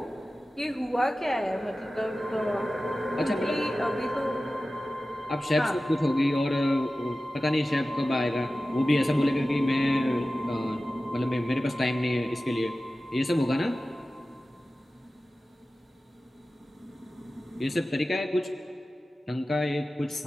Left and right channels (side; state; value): both; normal; correlation 0.95